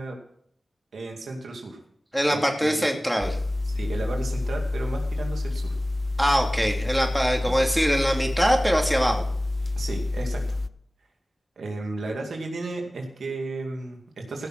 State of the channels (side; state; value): both; normal; correlation 0.97